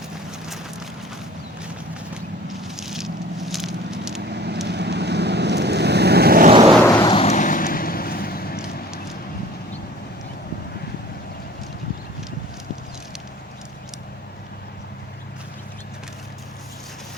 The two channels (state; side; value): normal; both; correlation 0.47